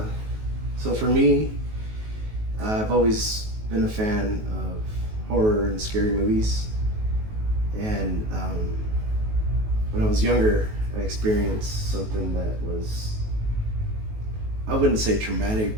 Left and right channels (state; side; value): late; left; 19 ms